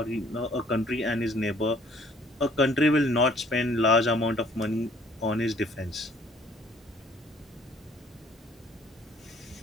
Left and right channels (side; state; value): both; normal; correlation 0.58